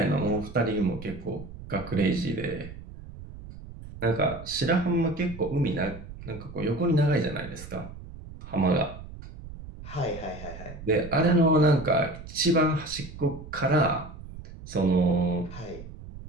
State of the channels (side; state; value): right; noise; rumble, 14 dB below the sound